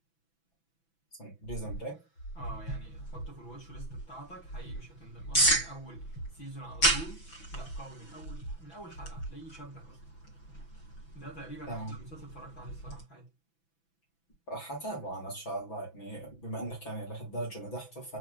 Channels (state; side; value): late; right; 6.0 ms